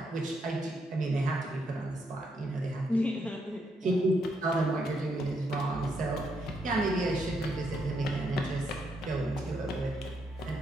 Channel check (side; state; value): both; normal; correlation 0.77